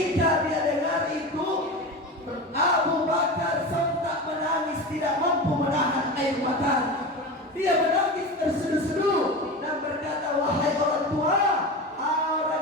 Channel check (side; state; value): both; normal; correlation 0.27